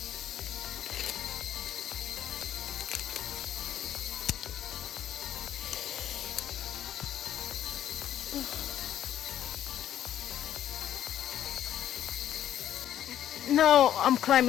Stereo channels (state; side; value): quieter; right; 11.1 dB